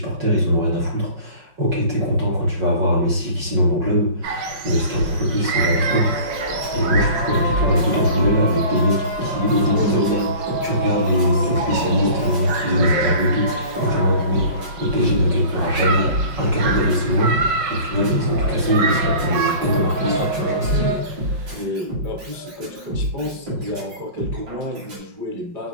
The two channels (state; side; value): late; left; 5.5 ms